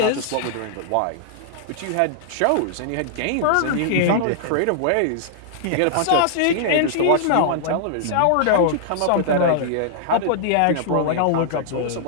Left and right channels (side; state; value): both; different; correlation -0.01